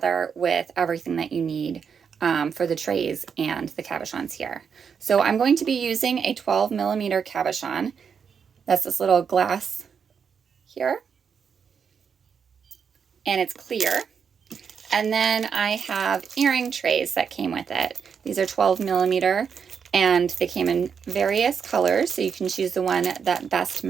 with everything that you need for the trays and the cabochons here. So I'm going to be using a 12mm cabochon. That's this little glass here, and it's clear. And then I have earring trays that came with it. These are 12mm, and they came in various colors, so you can choose the one that best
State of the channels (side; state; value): left; quieter; 6.7 dB